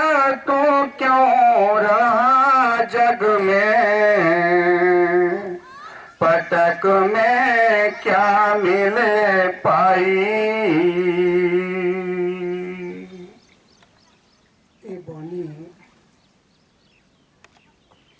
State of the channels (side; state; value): both; identical; correlation 1.00